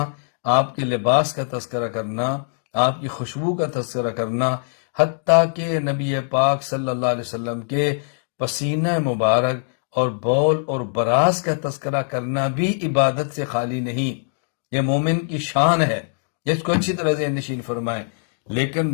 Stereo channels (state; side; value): silent; right; digital silence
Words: آپ کے لباس کا تذکرہ کرنا، آپ کی خوشبو کا تذکرہ کرنا، حتیٰ کہ نبی پاک صلی اللہ علیہ وسلم کے پسینہ مبارک اور بول اور براز کا تذکرہ کرنا بھی عبادت سے خالی نہیں۔ یہ مومن کی شان ہے، اس کو اچھی طرح ذہن نشین فرمائیں۔ لیکن